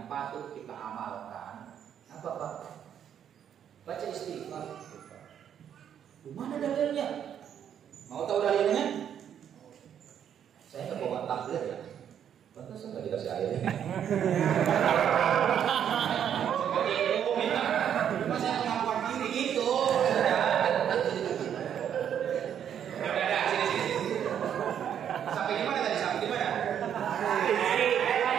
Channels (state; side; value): quieter; left; 9.1 dB